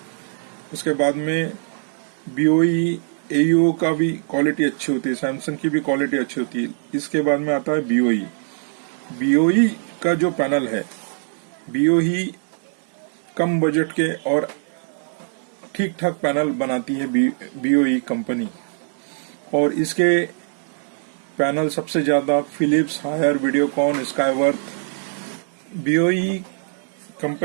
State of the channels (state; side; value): silent; left; digital silence